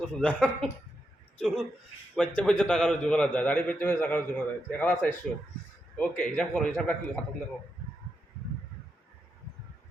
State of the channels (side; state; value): both; normal; correlation 0.84